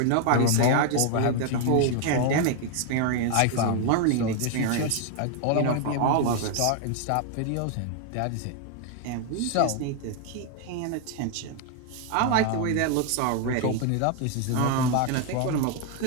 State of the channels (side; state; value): both; different; correlation 0.00